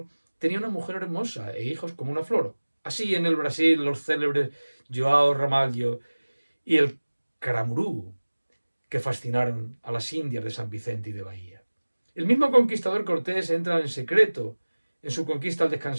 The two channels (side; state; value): both; inverted; correlation -1.00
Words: tenía una mujer hermosa e hijos como una flor. Así en el Brasil los célebres Joao Ramalho y el Caramurú, que fascinaron a las indias de San Vicente y de Bahía. El mismo conquistador Cortés entra en secreto en su conquista al